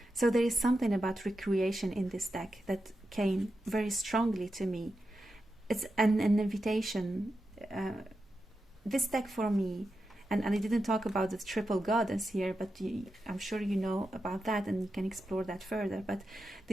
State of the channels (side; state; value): both; normal; correlation 0.89